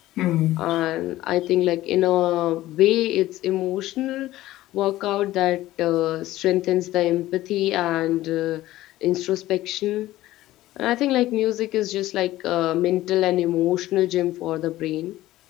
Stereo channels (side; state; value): right; quieter; 15.8 dB